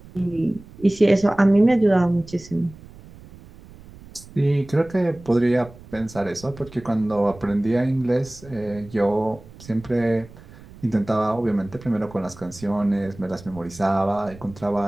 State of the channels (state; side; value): noise; right; rumble, 20 dB below the sound